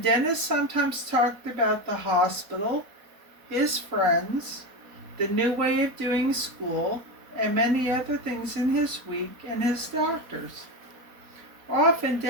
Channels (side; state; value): left; late; 4.2 ms